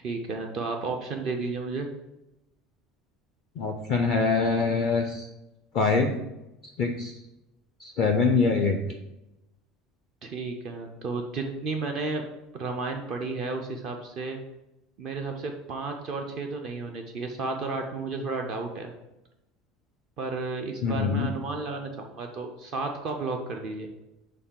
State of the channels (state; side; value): normal; both; correlation 0.33